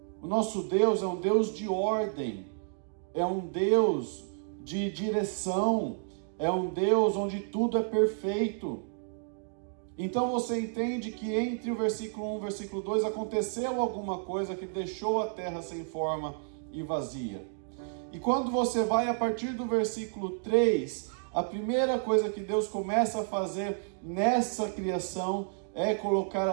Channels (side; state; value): left; silent; digital silence